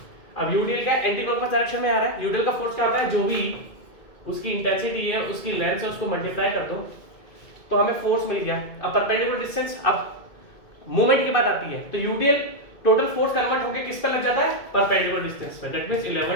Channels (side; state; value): right; late; 2.2 ms